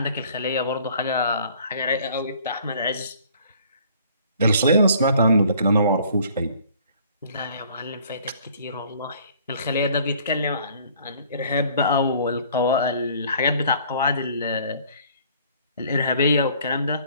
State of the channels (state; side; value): inverted; both; correlation -0.56